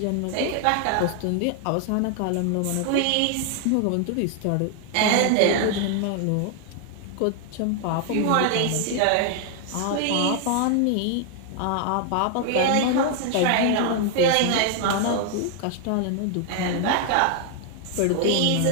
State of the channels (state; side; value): different; both; correlation 0.00